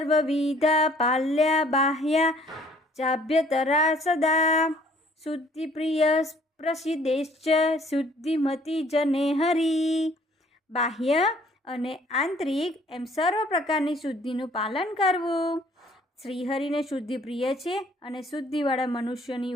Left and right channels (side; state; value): both; normal; correlation 0.59